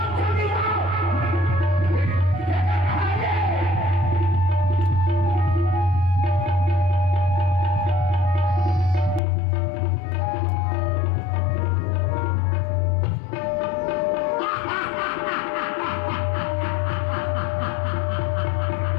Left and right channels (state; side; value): drops out; right; at 9.2 s